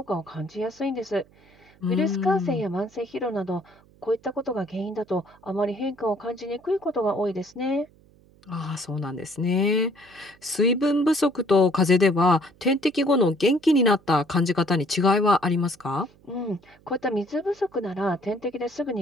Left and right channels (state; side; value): noise; right; hum, 29 dB below the sound